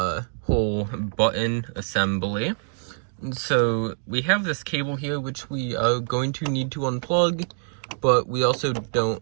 button assembly. And so we have this cable here which we are going to need to unplug, but we also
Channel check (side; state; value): left; silent; 62 dB below the other